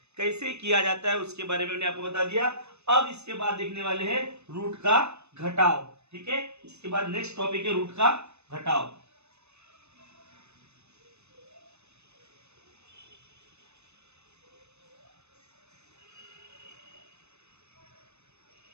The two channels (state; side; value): late; left; 0.81 ms